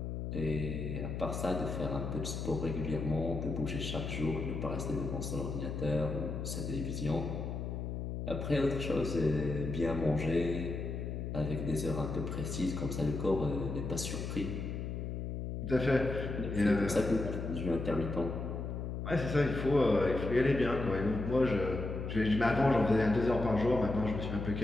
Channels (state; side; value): noise; left; hum, 4 dB below the sound